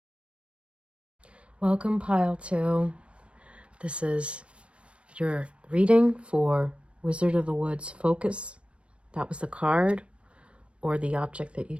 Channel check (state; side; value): late; left; 0.060 ms